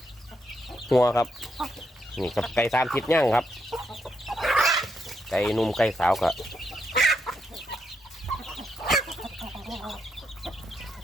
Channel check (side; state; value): both; normal; correlation 0.80